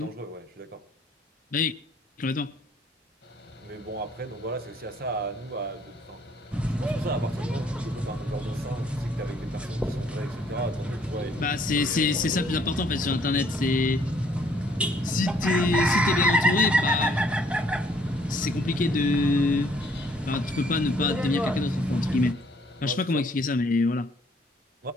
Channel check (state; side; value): normal; both; correlation 0.63